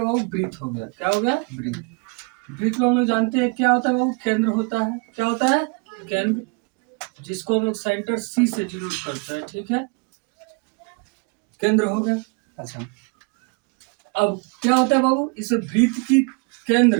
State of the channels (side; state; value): left; quieter; 32.6 dB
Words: बाबू? ब्रीथ हो गया। क्या हो गया? ब्रीथ। ब्रीथ को हम लोग जानते हैं क्या होता है बाबू? केंद्र होता है। क्या होता है? केंद्र, जिसको हम लोग सेंटर सी से डिनोट करते हैं। ठीक है, केंद्र हो गया। अच्छा, अब क्या होता है बाबू? इस ब्रीथ की